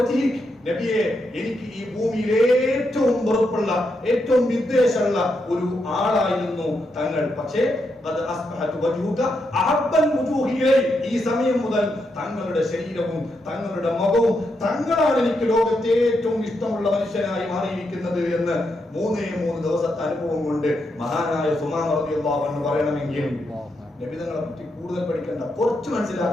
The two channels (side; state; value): both; normal; correlation 0.82